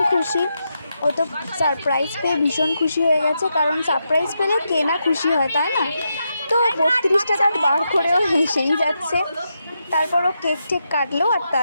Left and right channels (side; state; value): both; inverted; correlation -0.85